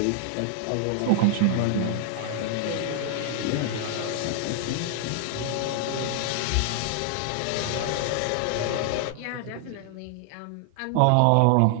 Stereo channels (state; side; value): different; both; correlation 0.00